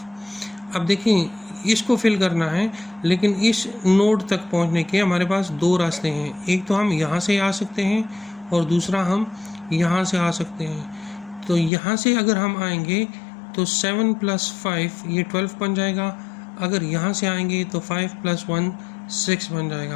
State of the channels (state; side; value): drops out; right; at 11.7 s